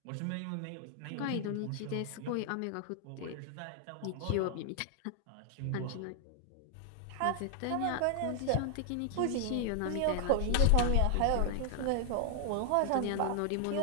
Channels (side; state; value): both; different; correlation 0.00